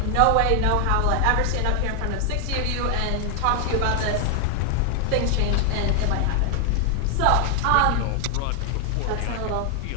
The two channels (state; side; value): different; both; correlation 0.00